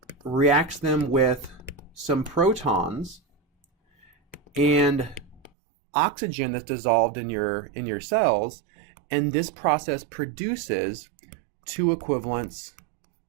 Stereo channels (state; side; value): drops out; left; at 5.5 s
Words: reacts them with some protons and oxygen that's dissolved in your cells, and this process produces 2 equivalents